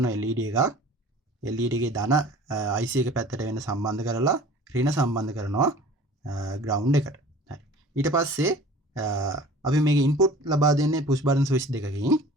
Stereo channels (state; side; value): normal; both; correlation 0.45